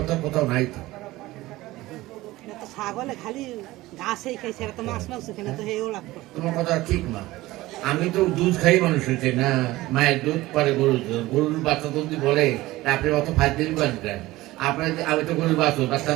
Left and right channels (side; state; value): left; quieter; 18.1 dB